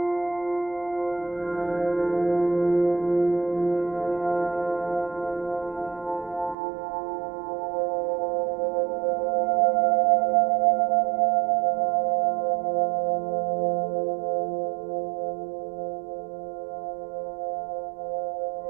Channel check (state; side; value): drops out; left; at 6.6 s